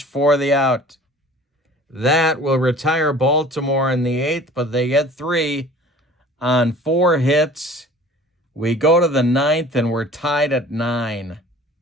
for the out. That will retire Baltimore in the 8th, but they get 3 on 4 hits. We go to the 9th, and we're tied at 9.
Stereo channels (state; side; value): normal; both; correlation 0.46